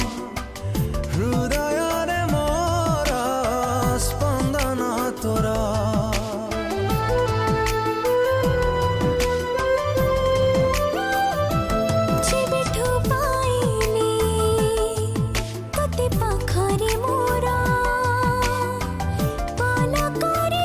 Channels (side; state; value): both; identical; correlation 1.00